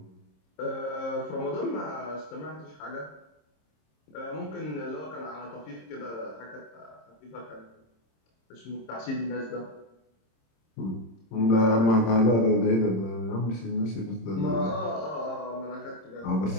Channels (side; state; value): right; late; 26 ms